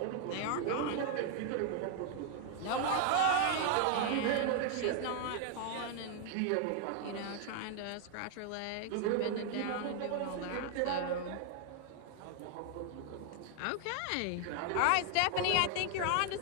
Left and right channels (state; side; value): different; both; correlation 0.00